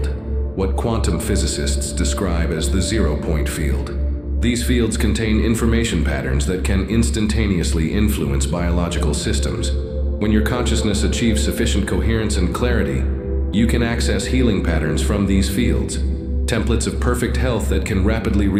what quantum physicists describe as the zero-point field. These fields contain information patterns that can instantaneously influence biological systems. When your consciousness achieves sufficient coherence and clarity, you can access healing patterns from these fields, templates of perfect health that can rapidly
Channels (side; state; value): left; noise; rumble, 25 dB below the sound